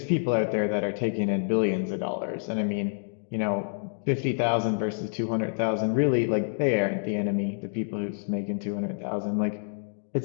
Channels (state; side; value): silent; right; digital silence